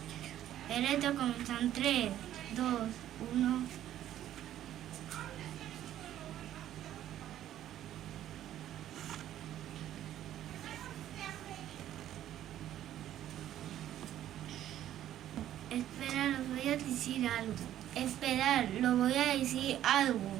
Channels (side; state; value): left; quieter; 12.0 dB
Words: El reto comienza en 3, 2, 1. Espera, los voy a decir algo. Esperar, lo voy a decir algo.